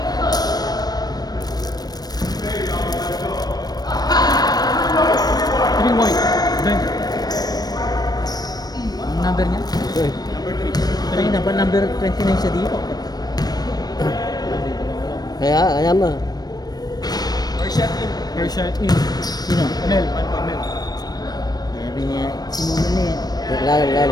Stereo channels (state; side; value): late; right; 0.19 ms